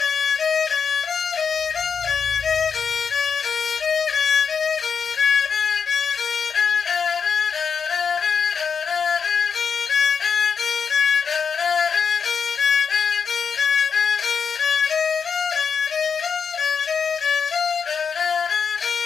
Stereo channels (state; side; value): quieter; right; 6.2 dB